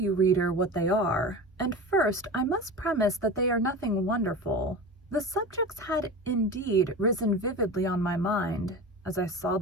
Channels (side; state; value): both; normal; correlation 0.30